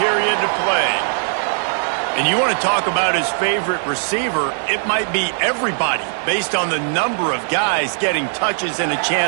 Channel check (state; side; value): silent; left; 66 dB below the other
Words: to play. And you want to talk about his favorite receiver, it might be everybody, based on the number of guys getting touches and a